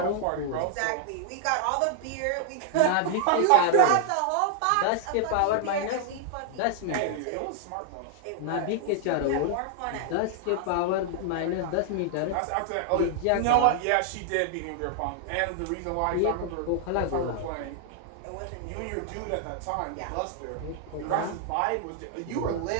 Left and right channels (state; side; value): different; both; correlation 0.00